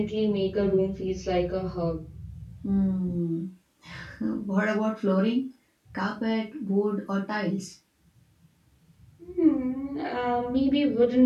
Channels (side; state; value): both; identical; correlation 1.00